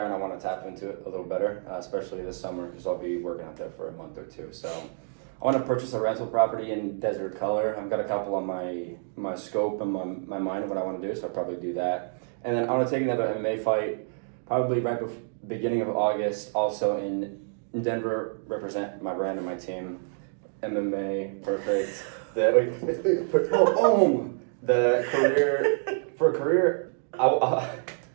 and I want to tap into it a little better, especially this summer, because I'll be working out there for a month or two. So I want to purchase a rental property in Desert Color. I've got a couple on my scope and my mind of what I want to do, so I'll probably do that. And then I want to take another MMA fight, probably right before beginning of August, also in Denver, represent my brand and my team. MMA, perfect. The career,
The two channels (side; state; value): left; silent; digital silence